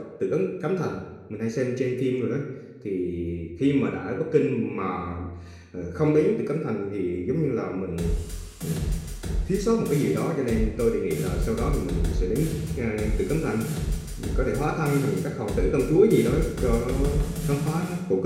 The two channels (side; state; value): both; identical; correlation 1.00